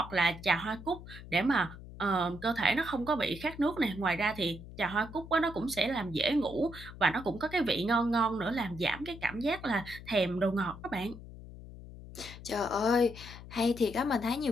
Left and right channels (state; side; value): noise; left; hum, 14 dB below the sound